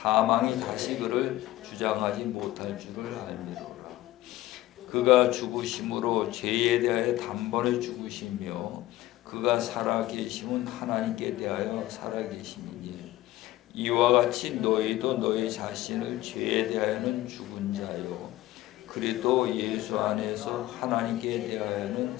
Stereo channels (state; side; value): quieter; right; 16.3 dB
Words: 다시 그를 주장하지 못할 줄을 알미로라. 그가 죽으심으로 죄에 대하여 단번에 죽으시며 그가 살아계심은 하나님께 대하여 살아계심이니 이와 같이 너희도 너희 자신을 죄에 대하여는 죽은 자요 그리스도 예수 안에서 하나님께 대하여는